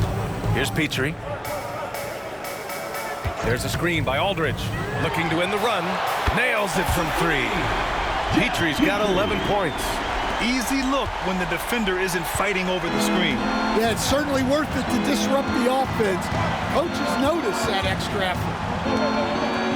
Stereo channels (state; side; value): identical; both; correlation 1.00